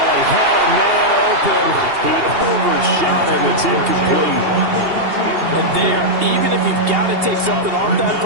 he had a man open. He overshot him. It's incomplete. And there, even if you've got to take something off that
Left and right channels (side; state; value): left; late; 2.8 ms